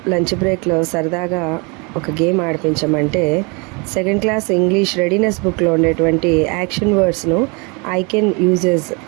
లంచ్ బ్రేక్లో సరదాగా ఒక గేమ్ ఆడిపించమంటే సెకండ్ క్లాస్ ఇంగ్లీష్ రెడీనెస్ బుక్లో ఉండేటువంటి యాక్షన్ వర్డ్స్ను I can uses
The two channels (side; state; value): left; quieter; 30.9 dB